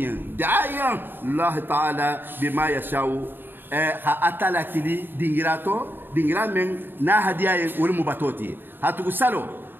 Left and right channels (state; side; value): late; left; 0.096 ms